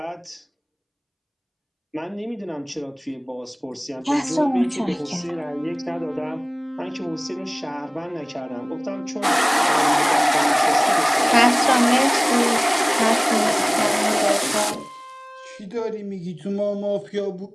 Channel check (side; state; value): both; identical; correlation 1.00